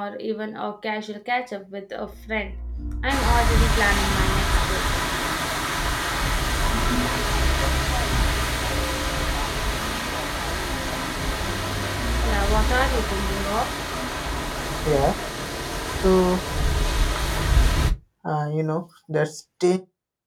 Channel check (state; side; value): identical; both; correlation 1.00